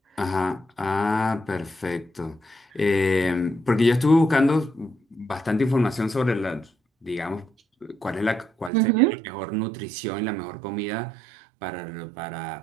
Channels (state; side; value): drops out; left; at 8.7 s